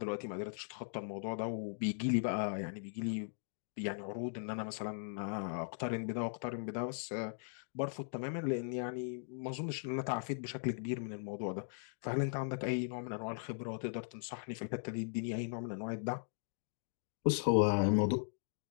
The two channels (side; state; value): right; silent; digital silence